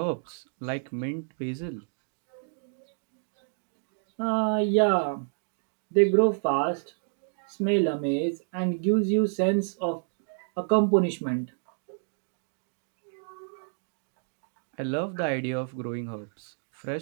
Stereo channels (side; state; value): left; silent; digital silence